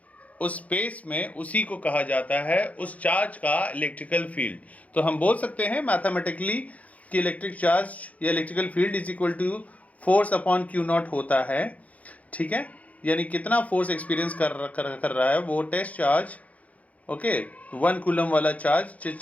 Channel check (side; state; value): right; late; 0.069 ms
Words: उस स्पेस में, उसी को कहा जाता है उस चार्ज का इलेक्ट्रिकल फील्ड। तो हम बोल सकते हैं मैथमेटिकली कि इलेक्ट्रिक चार्ज या electrical field is equal to force upon q not होता है। ठीक है, यानी कितना फोर्स एक्सपीरियंस कर रहा है वो टेस्ट चार्ज। ओके, 1 कूलम वाला